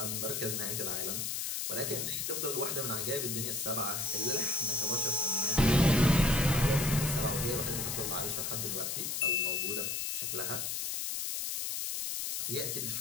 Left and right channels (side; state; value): left; noise; hiss, 1 dB below the sound